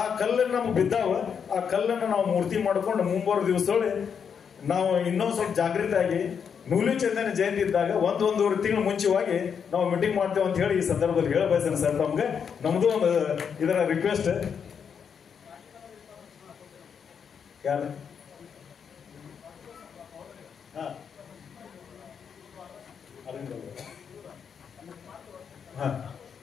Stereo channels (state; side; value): quieter; right; 7.0 dB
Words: ಕಲ್ಲನ್ನು ನಮ್ಗೆ ಬಿದ್ದಾವ, ಆ ಕಲ್ಲನ್ನು ನಾವು ಮೂರ್ತಿ ಮಾಡ್ಕೊಂಡು ಮುಂಬರುವ ದಿವಸದೊಳಗೆ ನಾವು ಇನ್ನೊಂದು ಸ್ವಲ್ಪ ಜಾಗೃತಿ ಆಗಿ ನೂಲಿ ಚಂದನ ಜಯಂತಿ ಇದ್ದಾಗ 1-1.5 ತಿಂಗಳು ಮುಂಚೆವಾಗಿ ನಾವು ಮೀಟಿಂಗ್ ಮಾಡ್ತೇವೆ ಅಂತ ಹೇಳಿ ಈ ಸಂದರ್ಭದಲ್ಲಿ ಹೇಳ ಬಯಸ್ತೇನೆ ಸರ್. ನಮ್ಗೆ ನಮ್ದು ಒಂದು ಇದರ ರಿಕ್ವೆಸ್ಟ್. ಯಾರು